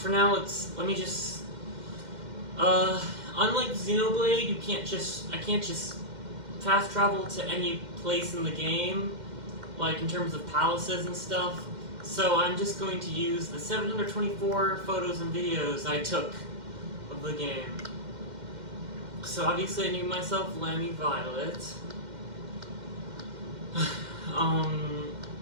now let me just. Unlike Xenoblade, I can't just fast travel to any place in the game, like in terms of palaces and stuff. So I'm just going to use the 724 photos and videos I took of the game. So obviously I named myself Lammy Violet.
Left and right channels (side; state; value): left; late; 2.1 ms